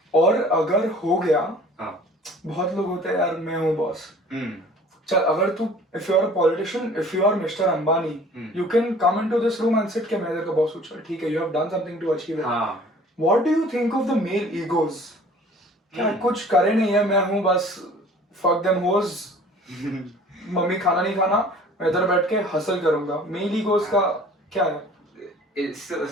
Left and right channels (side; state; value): both; normal; correlation 0.49